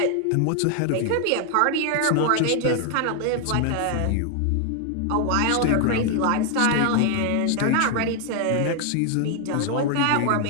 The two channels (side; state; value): both; different; correlation 0.00